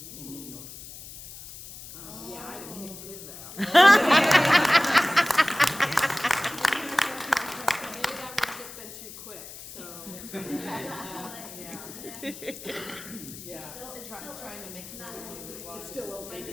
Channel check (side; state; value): left; noise; hiss, 14 dB below the sound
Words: in New York. Yeah, I'd have kicked his ass. Maybe that would have just been too quick, so. Yeah. Trying to make sense as well. It's still open.